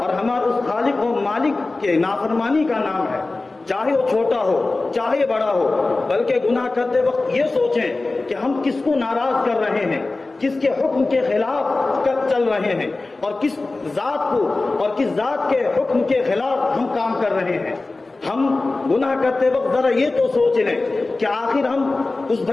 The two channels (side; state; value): right; quieter; 3.3 dB